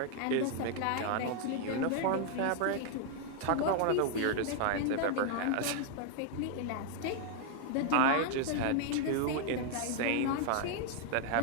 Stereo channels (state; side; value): different; both; correlation 0.00